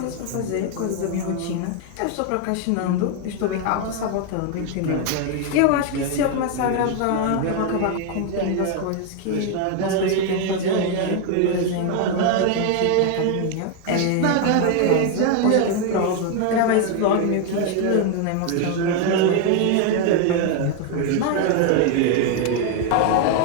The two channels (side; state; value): both; different; correlation 0.01